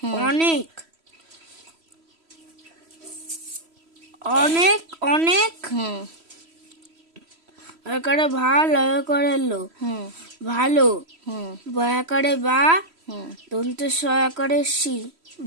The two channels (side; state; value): left; late; 3.1 ms